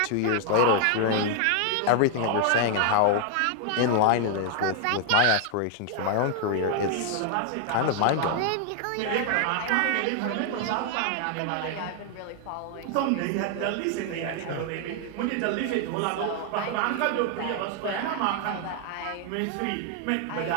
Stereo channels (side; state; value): both; different; correlation 0.00